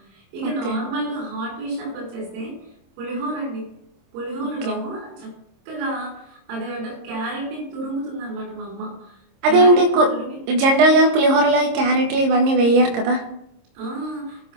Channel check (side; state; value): left; late; 26 ms